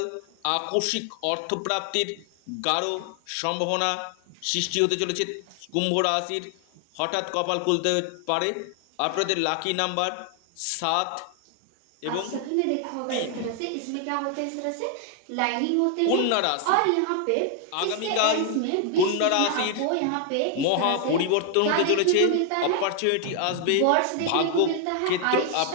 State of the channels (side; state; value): both; different; correlation 0.00